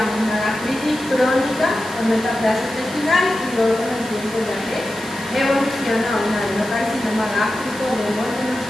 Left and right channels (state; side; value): noise; right; hiss, 14 dB below the sound